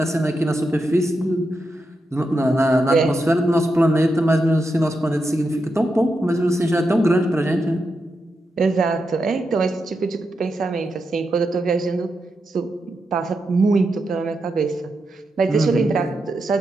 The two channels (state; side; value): normal; both; correlation 0.86